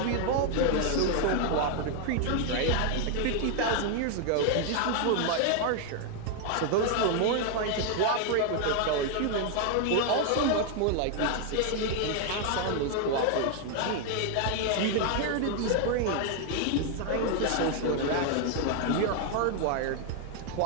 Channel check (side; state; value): both; different; correlation 0.00